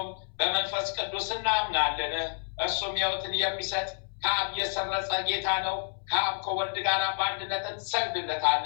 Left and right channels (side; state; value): right; silent; 58 dB below the other